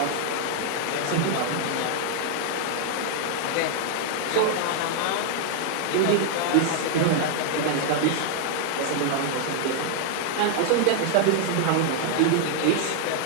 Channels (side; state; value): both; different; correlation 0.00